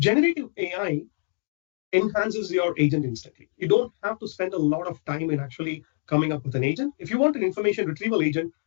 AI enhances your agent instantly. You don't have to spend a lot of time in actually coming up with an agent. If you want an information retrieval agent,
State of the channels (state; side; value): silent; right; digital silence